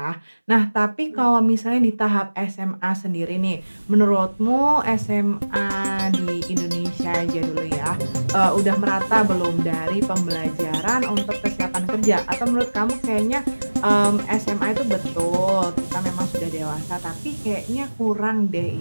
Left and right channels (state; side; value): inverted; both; correlation -1.00